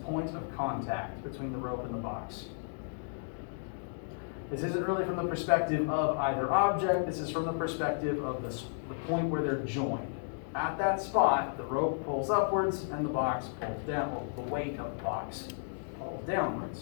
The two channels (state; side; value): silent; right; digital silence